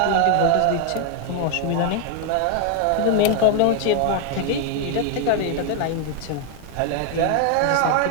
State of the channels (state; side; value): different; both; correlation 0.00